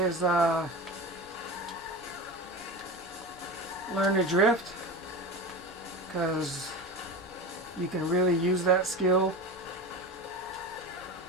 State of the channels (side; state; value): both; normal; correlation 0.28